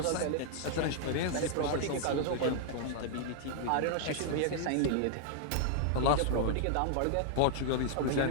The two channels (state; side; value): different; both; correlation -0.01